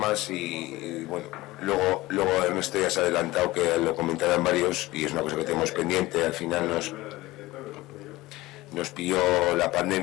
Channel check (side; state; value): right; quieter; 18.8 dB